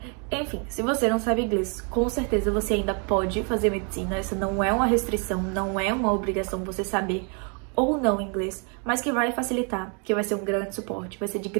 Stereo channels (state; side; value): quieter; left; 38.0 dB